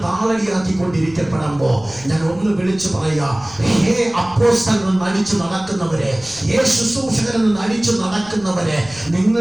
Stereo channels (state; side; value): noise; left; rumble, 21 dB below the sound